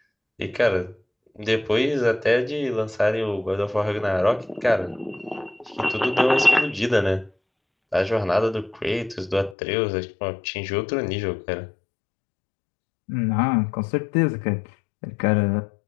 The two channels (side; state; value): right; drops out; at 9.6 s